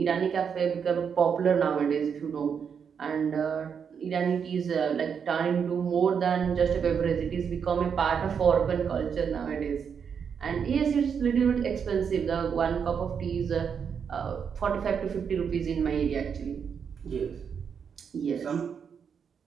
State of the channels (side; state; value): left; quieter; 6.9 dB